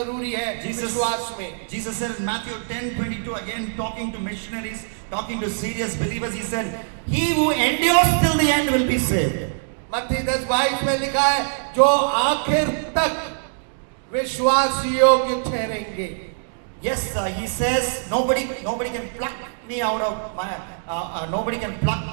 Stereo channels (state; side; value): silent; left; digital silence